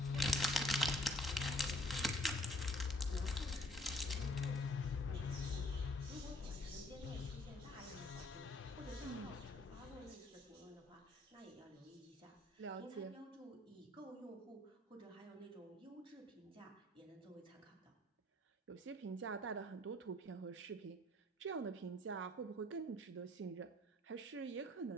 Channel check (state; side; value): normal; both; correlation 0.60